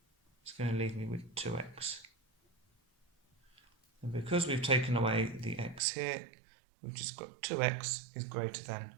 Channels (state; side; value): drops out; left; at 5.8 s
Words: is going to leave me with 2x. And because we've taken away the x here, we've just got 2x is greater than